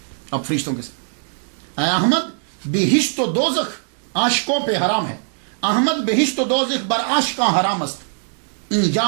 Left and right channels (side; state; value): left; silent; 65 dB below the other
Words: اب فرشتوں کے ساتھ. اے احمد بہشت و دوزخ عاشقوں پہ حرام ہے. احمد بہشت و دوزخ بر عاشقاں حرام است.